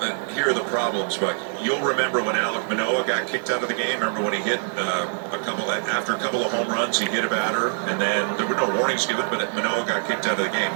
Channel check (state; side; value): silent; left; 63 dB below the other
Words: Here are the problems, but you'll remember when Alek Manoah got kicked out of the game. Remember when he hit after a couple of home runs, he hit a batter, and then there were no warnings given, but Manoah got kicked out of the game.